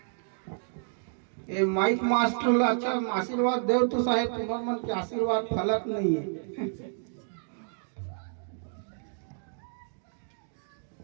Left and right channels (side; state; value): left; silent; digital silence